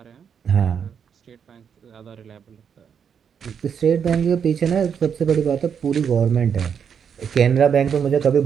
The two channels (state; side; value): quieter; left; 7.4 dB